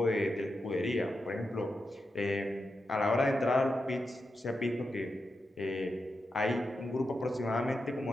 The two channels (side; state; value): both; normal; correlation 0.88